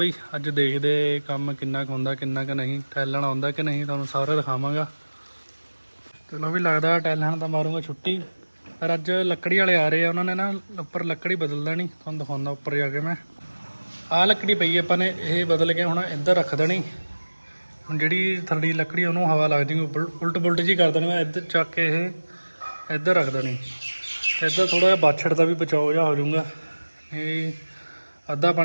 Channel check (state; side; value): inverted; both; correlation -1.00